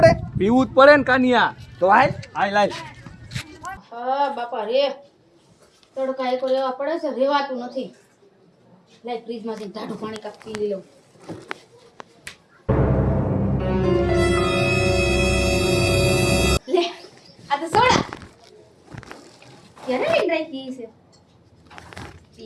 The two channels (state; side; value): identical; both; correlation 1.00